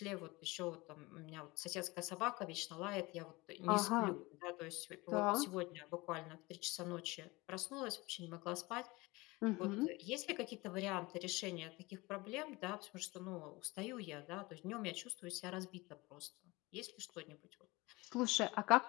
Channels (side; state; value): right; quieter; 22.8 dB